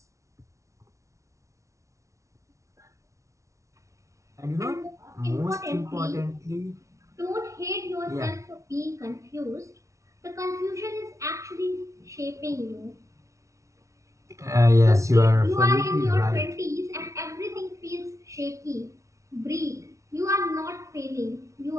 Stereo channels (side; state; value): left; late; 0.15 ms